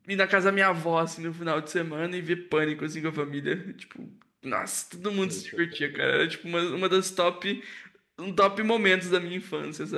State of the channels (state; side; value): identical; both; correlation 1.00